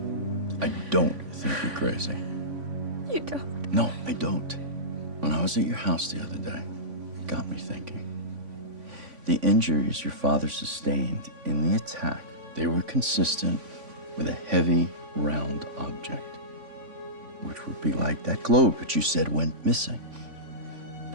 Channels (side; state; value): left; late; 3.5 ms